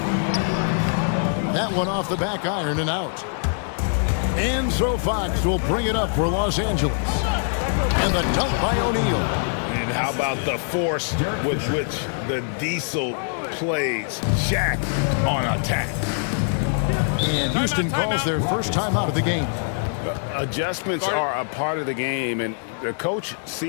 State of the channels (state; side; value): silent; right; 63 dB below the other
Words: That one off the back iron and out. And so Fox will bring it up for Los Angeles. And the dunk by O'Neal. And how about the force with which the Diesel plays? Shaq on attack. And Houston calls their first time out of the game. Adjustments are a part of the game, and the coach